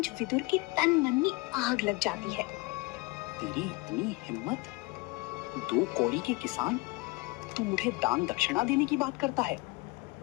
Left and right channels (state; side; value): quieter; right; 24.0 dB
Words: विदुर के तन मन में आग लग जाती है। तेरी इतनी हिम्मत? 2 कौड़ी के किसान, तू मुझे दान दक्षिणा देने की बात करता है?